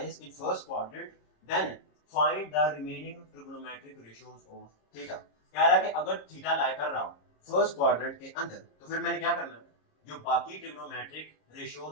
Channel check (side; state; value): right; late; 26 ms